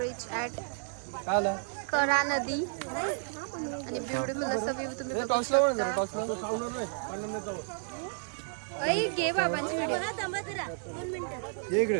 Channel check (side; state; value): left; silent; digital silence